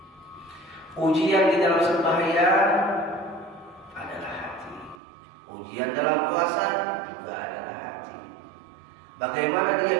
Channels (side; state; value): left; drops out; at 5.0 s